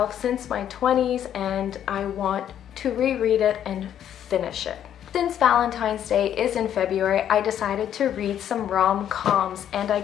since my 20s and I want to reread it and finish it. Since Valentine's Day is in February, I decided to read some rom-coms and I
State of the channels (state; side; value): quieter; right; 10.1 dB